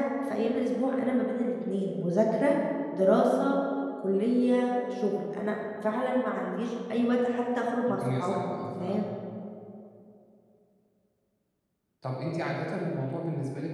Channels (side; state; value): both; identical; correlation 1.00